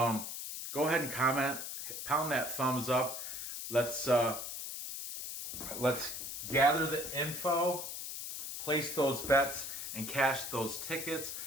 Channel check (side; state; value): left; noise; hiss, 6 dB below the sound